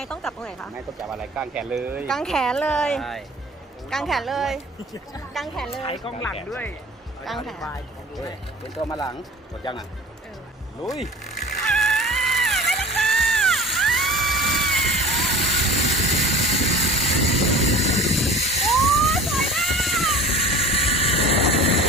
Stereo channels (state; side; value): normal; both; correlation 0.42